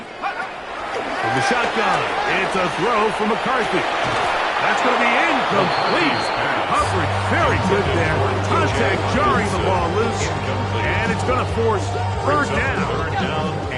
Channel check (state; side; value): identical; both; correlation 1.00